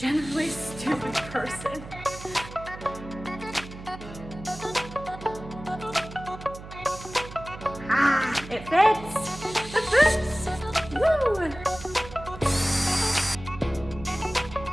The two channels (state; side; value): noise; right; hum, 14 dB below the sound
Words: a stupid person. It fits! It fits! Woo!